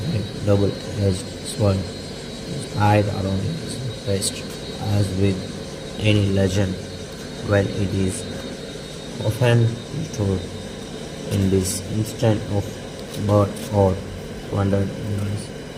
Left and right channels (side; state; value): both; identical; correlation 1.00